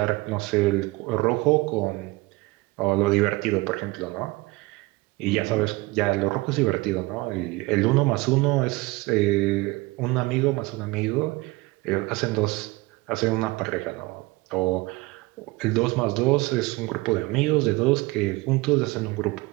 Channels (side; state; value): left; quieter; 22.3 dB